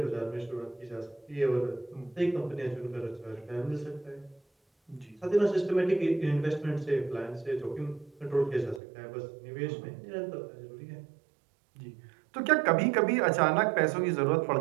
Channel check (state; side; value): drops out; left; at 8.8 s